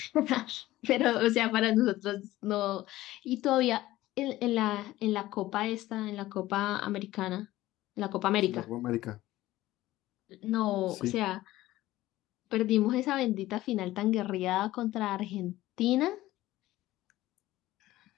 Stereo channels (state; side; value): quieter; right; 16.3 dB